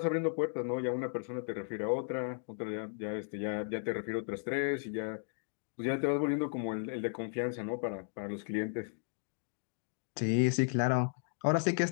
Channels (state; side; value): silent; right; digital silence